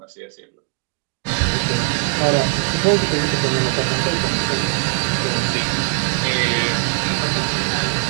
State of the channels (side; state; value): left; quieter; 35.7 dB